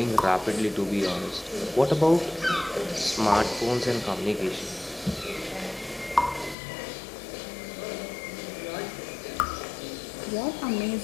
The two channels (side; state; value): right; drops out; at 6.6 s